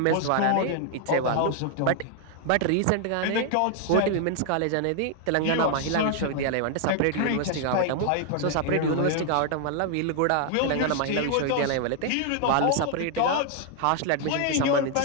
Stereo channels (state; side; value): different; both; correlation 0.00